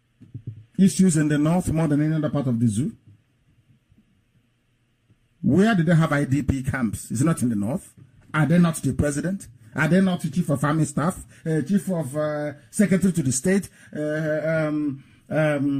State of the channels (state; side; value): identical; both; correlation 1.00